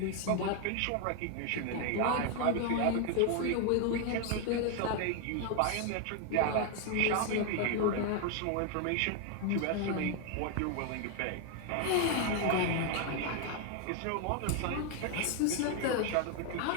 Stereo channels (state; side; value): different; both; correlation 0.01